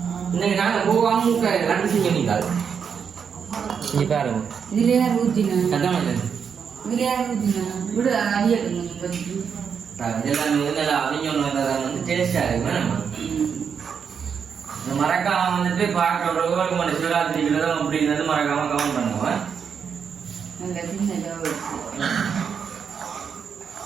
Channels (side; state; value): left; quieter; 6.9 dB